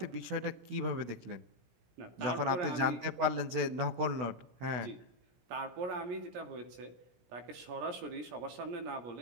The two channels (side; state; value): left; late; 17 ms